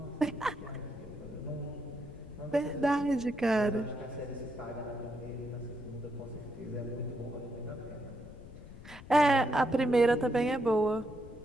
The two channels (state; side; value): noise; left; rumble, 16 dB below the sound